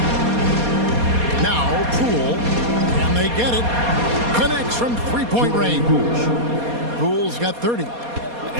Now Poole, and they get it. Connects from three-point range. Poole's got 30.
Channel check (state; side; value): late; left; 4.2 ms